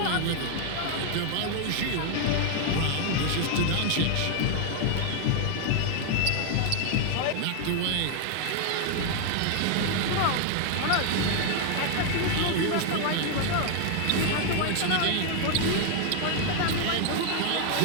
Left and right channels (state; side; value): different; both; correlation 0.00